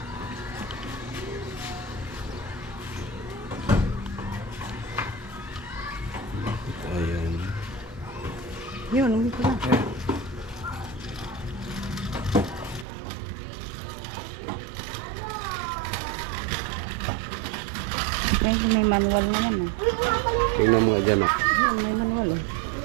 Bakit ayaw mo? Yun, uwi ko na. Yan. Yan, may manual na yan. Tingnan mo nga dyan ah. Yun, may manual.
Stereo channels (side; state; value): left; drops out; at 12.9 s